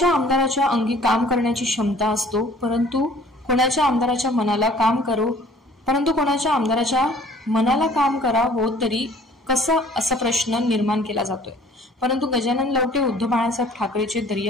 आमदाराच्या अंगी काम करण्याची क्षमता असतो, परंतु कोणाच्या आमदाराच्या मनाला काम करा हो तरी कसं असा प्रश्न निर्माण केला जातोय। परंतु गजानन लवटे उद्धव बाळासाहेब ठाकरेचे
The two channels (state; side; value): normal; both; correlation 0.53